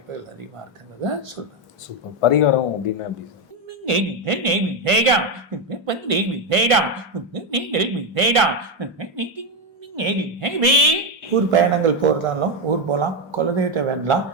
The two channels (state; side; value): normal; both; correlation 0.08